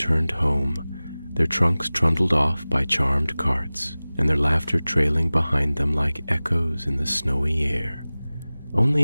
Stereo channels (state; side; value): inverted; both; correlation -0.98